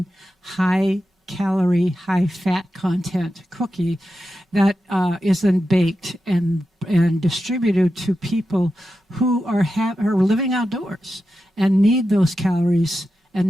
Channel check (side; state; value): both; normal; correlation 0.90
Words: high calorie, high fat content cookie that is then baked and distributed to people who are living outdoors and need those calories